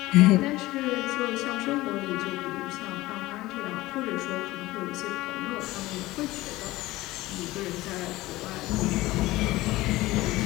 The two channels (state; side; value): quieter; right; 18.4 dB